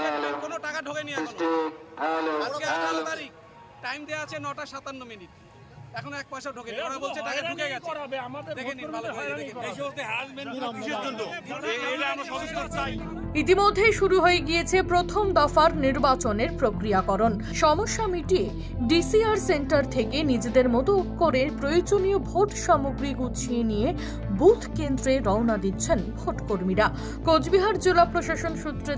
কোনো টাকা ঢোকেনি এখনো। আজকে 18 তারিখ, টাইম দেওয়া আছে 9:57। এখন 1 পয়সা ঢোকেনি, ওরা বলছে টাকা ঢুকে গেছে। দেখেন ভালো করে দেখেন এই সমস্ত হ্যারাসমেন্ট কিসের জন্য? এটা আমরা সদস্য চাই। ইতিমধ্যেই শুরু হয়ে গিয়েছে প্রথম দফার নির্বাচনের প্রক্রিয়াকরণ। সমস্যা মিটিয়ে ডিসিআর সেন্টার থেকে নিজেদের মতো করে প্রয়োজনীয় ভোট সামগ্রী গুছিয়ে নিয়ে বুথ কেন্দ্রে রওনা দিচ্ছেন ভোট কর্মীরা। কোচবিহার জেলা প্রশাসন সূত্রে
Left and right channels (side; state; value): both; identical; correlation 1.00